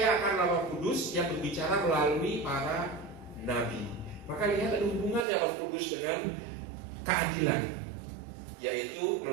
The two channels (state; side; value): drops out; left; at 5.2 s